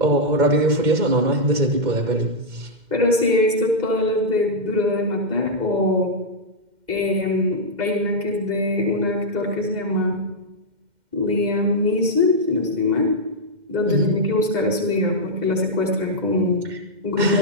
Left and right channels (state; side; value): late; left; 2.1 ms